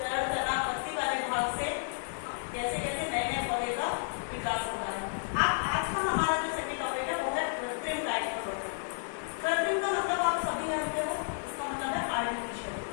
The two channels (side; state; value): right; silent; digital silence